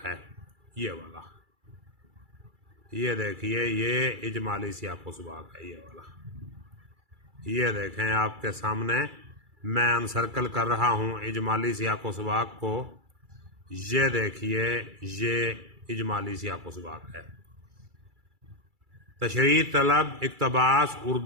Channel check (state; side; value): late; left; 2.3 ms